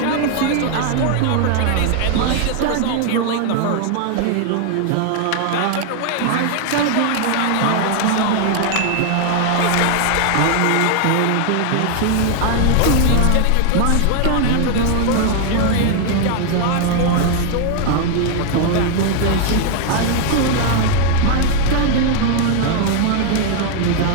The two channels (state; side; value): different; both; correlation 0.00